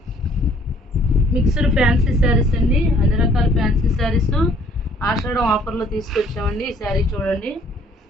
మిక్స్డ్ ఫ్యాన్సీ శారీస్ అండి. అన్ని రకాల ఫ్యాన్సీ శారీస్ ఆషాఢం ఆఫర్లో తీసుకొచ్చామండి. ఈ శారీ చూడండి.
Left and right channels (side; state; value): both; normal; correlation 0.60